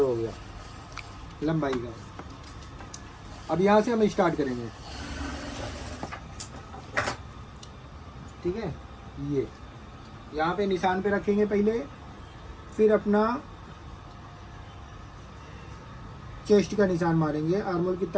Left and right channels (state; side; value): identical; both; correlation 1.00